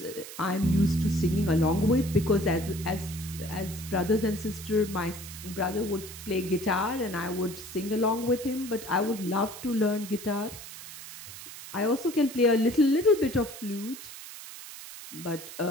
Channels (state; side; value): noise; right; hiss, 13 dB below the sound